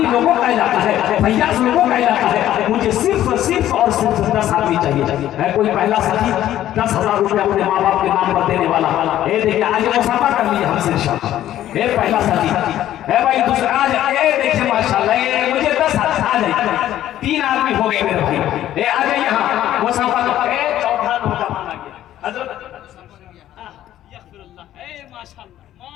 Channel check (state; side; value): quieter; right; 12.6 dB